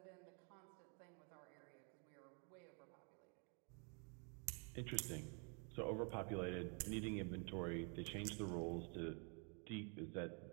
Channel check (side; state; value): left; quieter; 37.7 dB